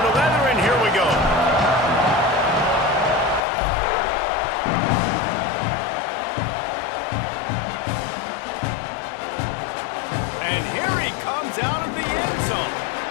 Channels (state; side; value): drops out; right; at 3.4 s